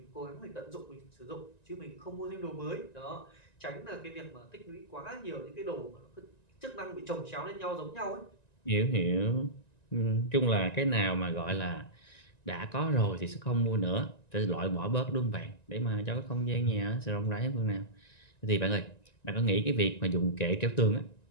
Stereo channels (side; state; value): right; late; 1.9 ms